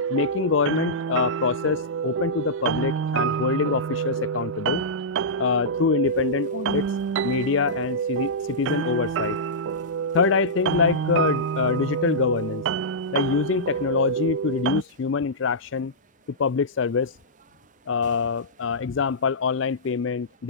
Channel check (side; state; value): both; normal; correlation -0.14